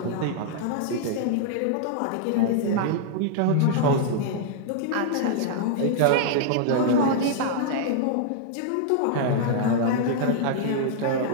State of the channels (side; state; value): both; different; correlation -0.01